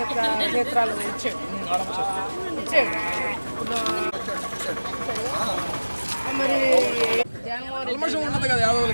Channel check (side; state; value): both; inverted; correlation -1.00